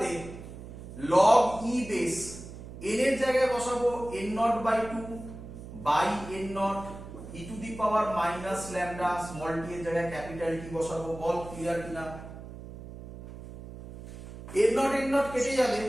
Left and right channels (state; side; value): noise; right; hum, 13 dB below the sound